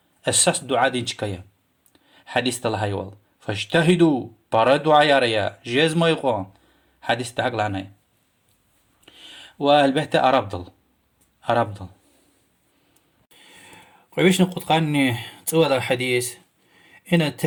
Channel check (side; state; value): both; identical; correlation 1.00